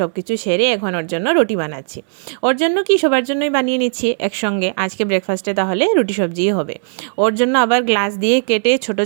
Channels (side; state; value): left; silent; digital silence